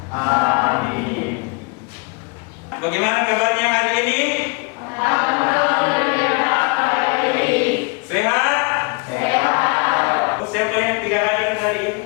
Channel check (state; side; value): quieter; right; 32.3 dB